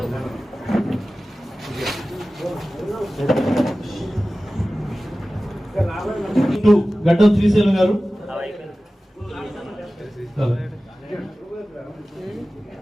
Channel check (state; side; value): normal; both; correlation 0.96